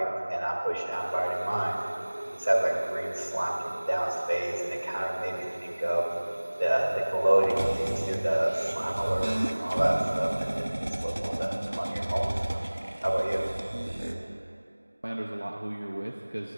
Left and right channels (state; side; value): inverted; both; correlation -1.00